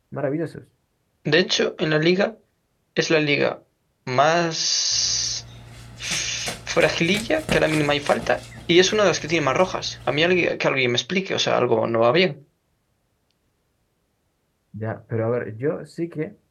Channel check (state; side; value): identical; both; correlation 1.00